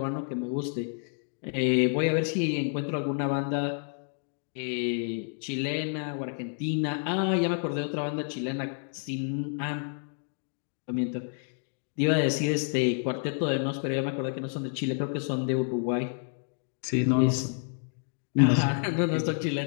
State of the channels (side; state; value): right; silent; 58 dB below the other